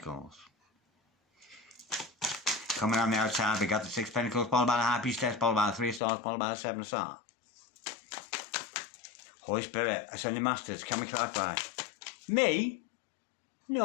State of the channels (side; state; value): right; drops out; at 6.0 s